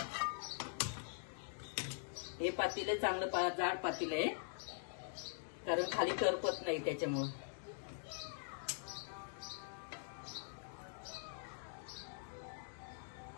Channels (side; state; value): right; silent; digital silence